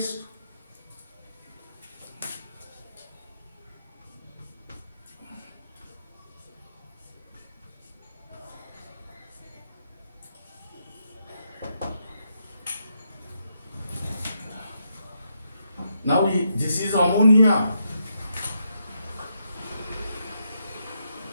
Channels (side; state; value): both; inverted; correlation -0.80